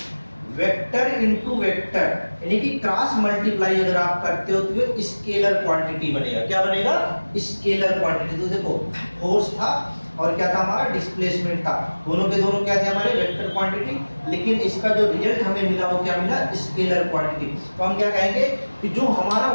वेक्टर इनटू वेक्टर, यानी कि क्रॉस मल्टीप्लाई अगर आप करते हो तो ये स्केलर क्वांटिटी बनेगा। क्या बनेगा? Scalar quantity. तो देखो फोर्स था और क्या था हमारा? डिस्प्लेसमेंट था। दोनों के दोनों क्या थे? हमारे वेक्टर क्वांटिटी, लेकिन इसका जो रिजल्ट हमें मिला वो क्या मिला? Scalar quantity. तो हम क्या कहेंगे कि जो हमारा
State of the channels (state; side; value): inverted; both; correlation -1.00